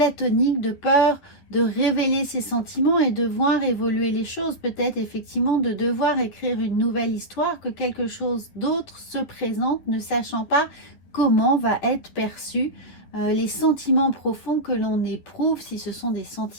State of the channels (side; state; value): right; late; 11 ms